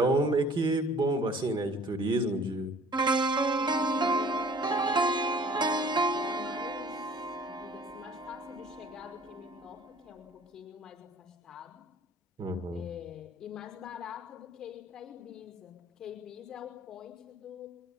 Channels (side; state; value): both; normal; correlation 0.52